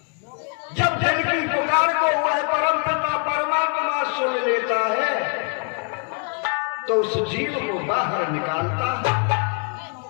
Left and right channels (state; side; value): quieter; right; 37.6 dB